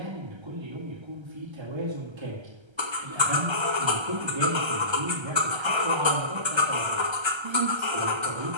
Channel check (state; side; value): late; left; 1.3 ms